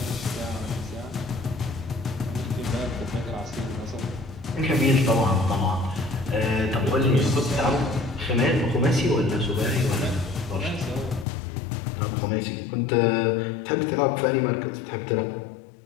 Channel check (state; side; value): drops out; right; at 11.2 s